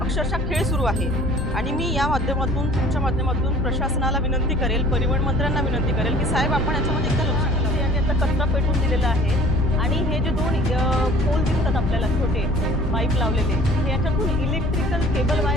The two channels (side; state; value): both; normal; correlation 0.50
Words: खेळ सुरू आहे. आणि मी या माध्यमातून, तुमच्या माध्यमातून प्रशासनाला विनंती करेल, परिवहन मंत्र्यांना विनंती करेल की साहेब, आपण याच्यामध्ये एकदा लक्ष घालावं. यांनी आता कचरा पेटवून दिलेला आहे आणि हे जे दोन पोल दिसतात आपल्याला, छोटे पाईप लावलेले, हे याच्यातून इलेक्ट्रिकल केबल